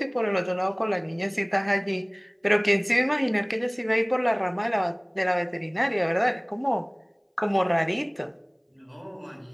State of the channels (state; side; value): identical; both; correlation 1.00